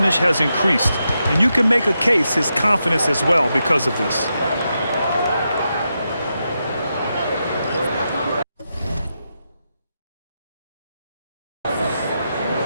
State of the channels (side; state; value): both; inverted; correlation -0.86